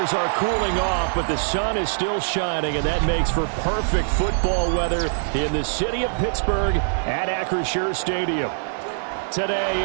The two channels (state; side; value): silent; left; 59 dB below the other